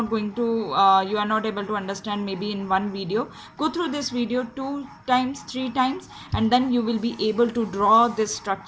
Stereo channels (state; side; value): identical; both; correlation 1.00